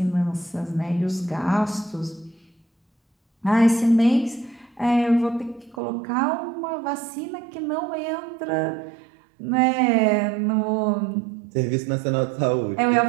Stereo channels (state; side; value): drops out; left; at 5.8 s